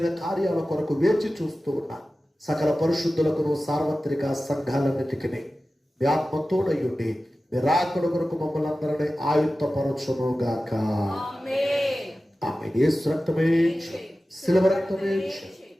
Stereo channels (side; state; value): both; normal; correlation 0.95